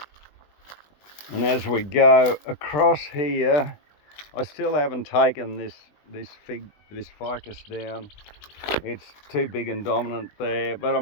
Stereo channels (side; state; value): right; late; 20 ms